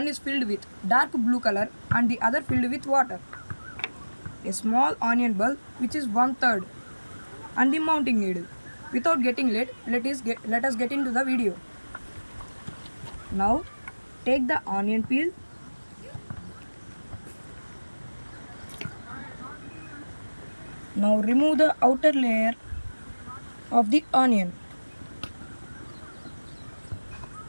is filled with dark blue color and the other filled with water. A small onion bulb which is 1/3 and the mounting needle. Without getting late, let us get into the video. Now take the onion peel. Now remove the outer layer of the onion.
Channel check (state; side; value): inverted; both; correlation -1.00